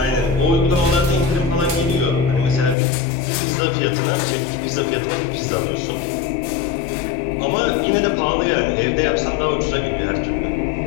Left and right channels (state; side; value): drops out; right; at 2.8 s